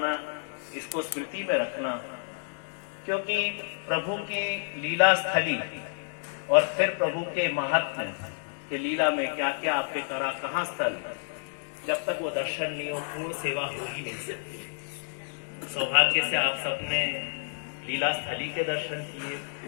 इसको स्मृति में रखना, क्योंकि प्रभु की लीला स्थली और फिर प्रभु के महात्म्य के लीला में क्या क्या आपके करा, कहाँ स्थल, जब तक वो दर्शन नहीं हो पूर्ण सेवा हो ही नहीं सकती। सौभाग्य से आप सबने लीला स्थली के दर्शन किए,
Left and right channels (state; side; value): silent; right; digital silence